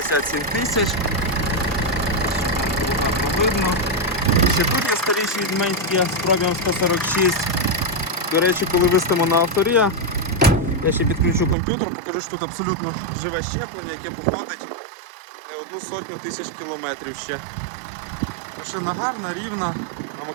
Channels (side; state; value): left; drops out; at 11.6 s